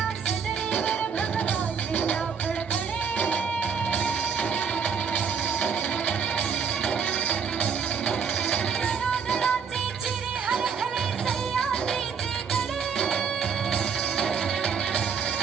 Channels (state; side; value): quieter; left; 6.4 dB